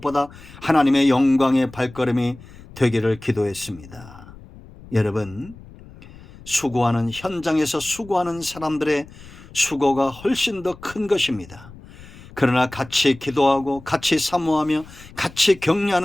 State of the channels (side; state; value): left; noise; rumble, 20 dB below the sound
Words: 하나님의 영광의 발걸음이 되기를 기도했습니다. 여러분, 수고하는 현장에서 수고하는 사람들의 수고가 훨씬 더 큰 것입니다. 그러나 같이 기도하고 같이 사모하며 같이